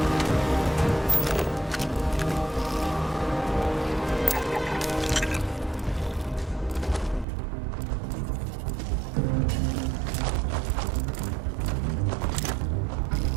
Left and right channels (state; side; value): drops out; left; at 7.2 s